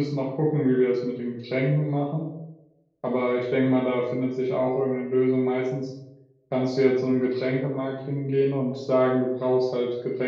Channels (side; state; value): both; identical; correlation 1.00